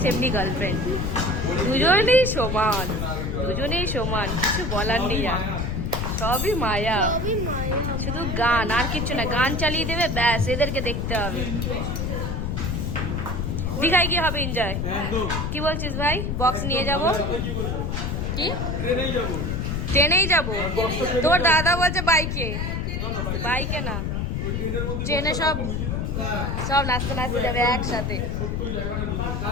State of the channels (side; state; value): left; noise; rumble, 1 dB below the sound